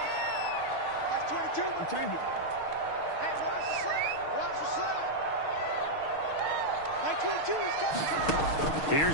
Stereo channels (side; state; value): right; late; 6.5 ms